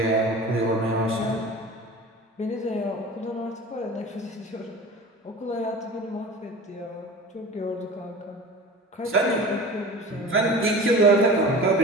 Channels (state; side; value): normal; both; correlation 0.37